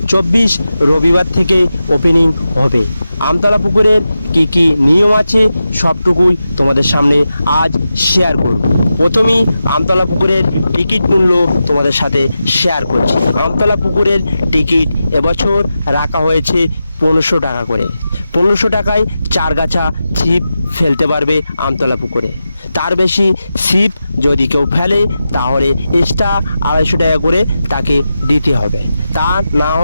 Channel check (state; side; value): inverted; both; correlation -0.91